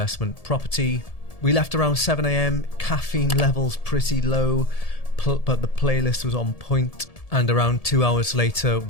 property. We left around 7 AM, caffeine levels pretty low, but the playlist was on point. And around 2 hours later,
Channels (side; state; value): right; late; 1.7 ms